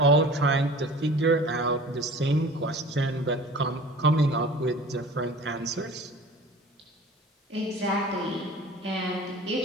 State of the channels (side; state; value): both; normal; correlation 0.43